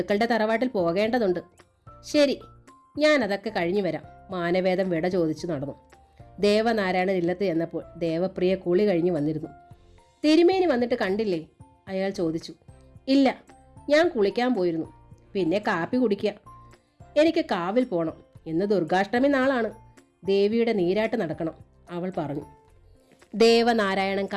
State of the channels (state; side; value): identical; both; correlation 1.00